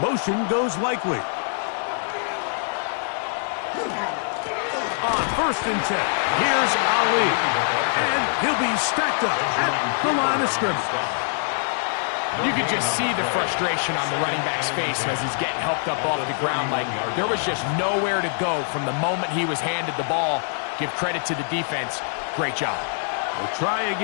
goes Likely. On 1st and 10, here's Ali. And he'll be stacked up at the line of scrimmage. You could just see the frustration on the running back's face as he's getting helped up off the ground. Like there was just nowhere to go from the moment he was handed the ball. Give credit to the defense. Great job. We'll try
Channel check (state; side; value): silent; right; digital silence